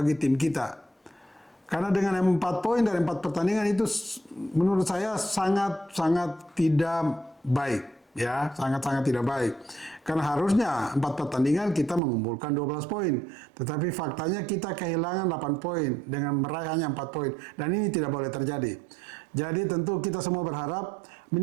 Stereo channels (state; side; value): drops out; left; at 12.0 s